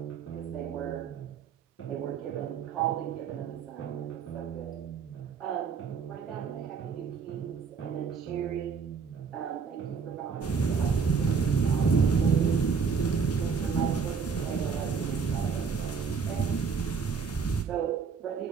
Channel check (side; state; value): left; quieter; 5.9 dB